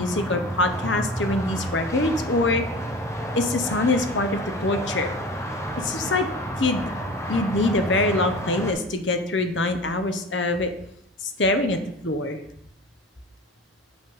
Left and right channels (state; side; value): normal; both; correlation 0.35